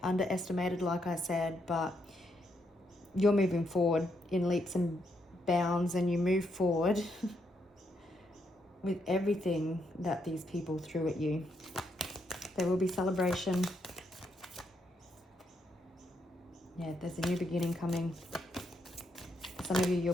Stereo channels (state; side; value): normal; both; correlation 0.78